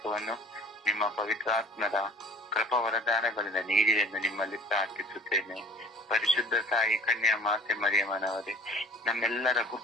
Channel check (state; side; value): normal; both; correlation 0.45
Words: ನಿಮ್ಮ ಪವಿತ್ರಾತ್ಮರ ಕೃಪಾ ವರದಾನಗಳಿಂದ ನೀಡಿ ಎಂದು ನಿಮ್ಮಲ್ಲಿ ಪ್ರಾರ್ಥಿಸುತ್ತೇನೆ. ಪರಿಶುದ್ಧ ಸಾಯಿ ಕನ್ಯಾ ಮಾತೆ ಮರಿಯಮ್ಮನವರೇ, ನಮ್ಮೆಲ್ಲರ